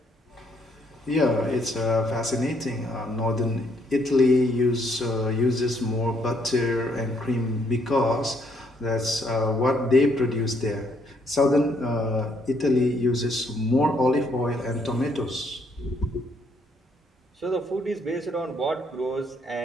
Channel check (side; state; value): both; normal; correlation 0.70